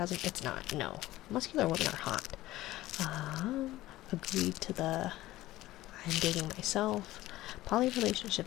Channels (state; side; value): quieter; right; 16.4 dB